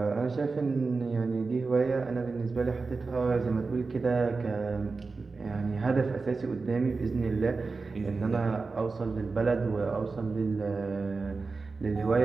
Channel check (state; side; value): quieter; left; 4.1 dB